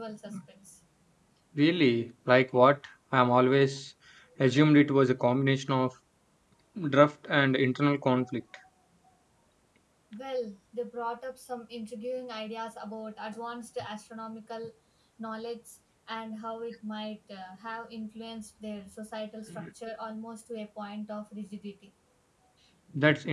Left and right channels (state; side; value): identical; both; correlation 1.00